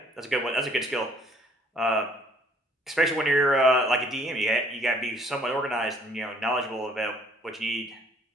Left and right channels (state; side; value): normal; both; correlation 0.60